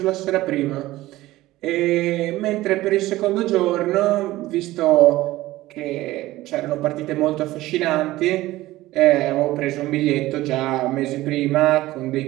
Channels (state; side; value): quieter; left; 17.1 dB